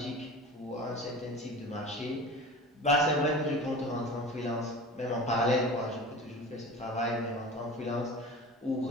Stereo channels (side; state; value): both; normal; correlation 0.36